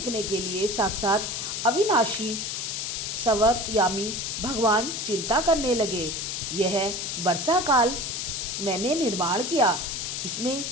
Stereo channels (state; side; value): noise; left; hiss, 3 dB below the sound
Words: के लिए साक्षात अविनाशी सवर्तयामी भगवान चिंता करने लगे। यह वर्षा काल मैंने निर्माण किया। इसमें